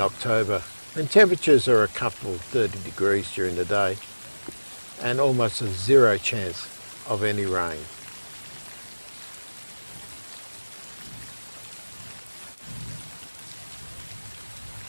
when temperatures are a comfortable 30 degrees during the day and almost a zero chance of any rain.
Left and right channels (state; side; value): inverted; both; correlation -1.00